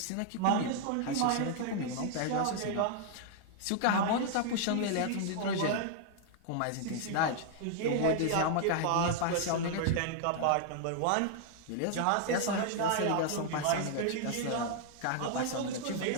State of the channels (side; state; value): both; different; correlation 0.00